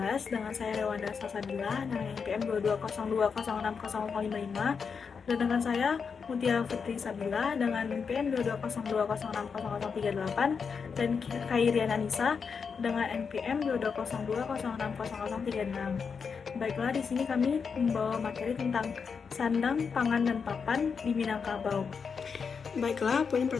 dengan saya Rewanda Salsabila dengan NPM 2202060555 dan dengan saya Mutia Fitri Sabila dengan NPM 2202060038 dan Khairian Anissa dengan NPM 2202060036. Baiklah, di sini kami membawa materi tentang sandang, pangan, dan papan di Minangkabau. Baiklah, poin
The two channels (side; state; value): right; quieter; 5.9 dB